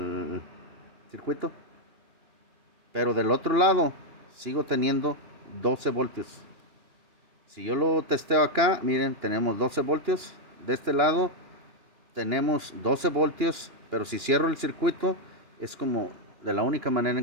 circuito. Pero del otro lado sigo teniendo 12 voltios. Si yo lo testeo acá, miren, tenemos 12 voltios. De este lado tenemos 12 voltios, pero si cierro el circuito es como de la única manera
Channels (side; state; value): left; late; 2.9 ms